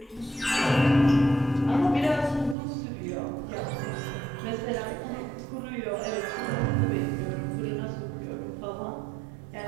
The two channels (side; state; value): left; drops out; at 2.6 s